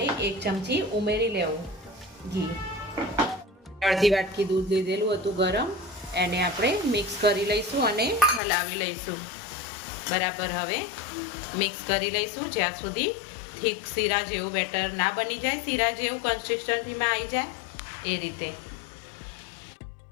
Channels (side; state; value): right; drops out; at 8.4 s